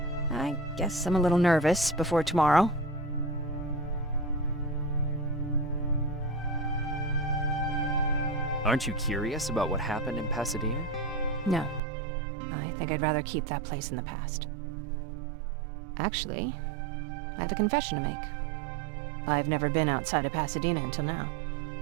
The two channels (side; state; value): left; drops out; at 11.8 s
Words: I guess I'm a little nervous before tomorrow. Aren't you curious about what happened in Pasadena? No. I think I'd rather keep that place in the past. Actually, I have a confession to make. I've never been outside of Pasadena until now.